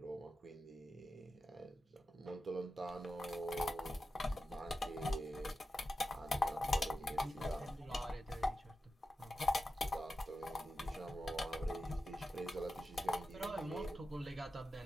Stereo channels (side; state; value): both; normal; correlation 0.91